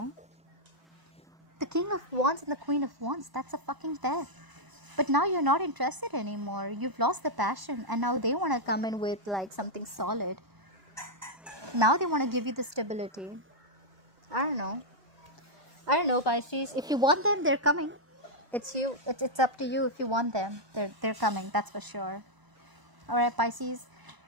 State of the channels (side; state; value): left; late; 1.0 ms